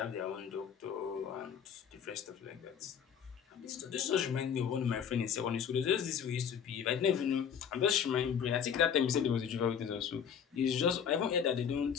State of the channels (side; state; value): right; quieter; 7.7 dB